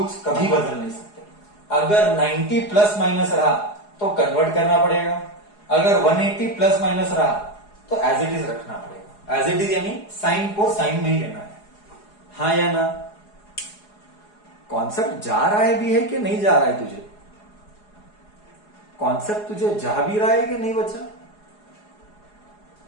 कभी बदल नहीं सकते, अगर 90 प्लस माइनस रहा तो कन्वर्ट करना पड़ेगा, अगर 180 प्लस माइनस रहा तो एज इट इज रखना पड़ेगा, एज इट इज यानी साइन को साइन में ही लेना है, हाँ या ना, कॉन्सेप्ट जा रहा है भी है कि नहीं जा रहा है तुझे, कॉन्सेप्ट तुझे जा भी रहा है कि नहीं बच्चा,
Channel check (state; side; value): late; right; 4.8 ms